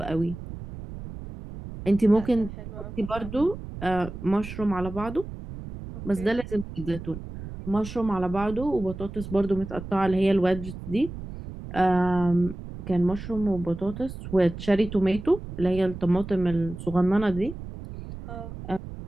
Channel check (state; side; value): noise; right; rumble, 11 dB below the sound